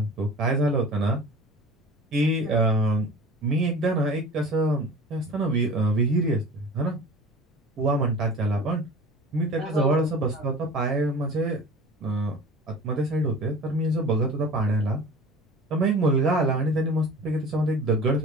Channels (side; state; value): both; normal; correlation 0.39